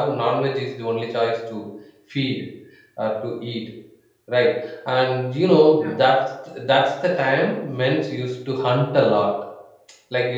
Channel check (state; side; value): identical; both; correlation 1.00